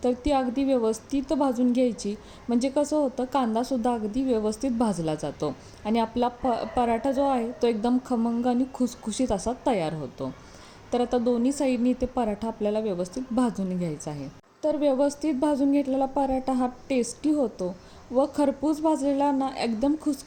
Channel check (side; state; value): both; identical; correlation 1.00